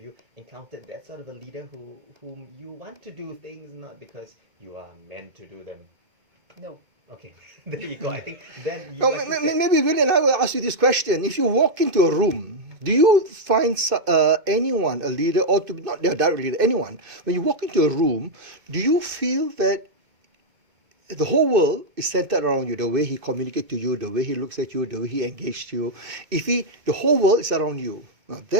encountered that sort of a leader whom you want to do things not because you are meant to do them? No. Okay, there you go. I think then you. Well, maybe Will and I will ask you this question: if you walk into a room, do you find anyone, a leader, or to not their direct leader, anyone, when you walk into a room, do you feel that the whole world is centered around you? The way he communicates to you, the way he looks at you, the way he engages you. The whole world is around you. Now,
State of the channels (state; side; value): late; left; 2.2 ms